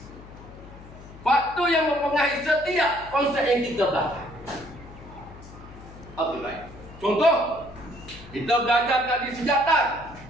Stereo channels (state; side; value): noise; left; hum, 18 dB below the sound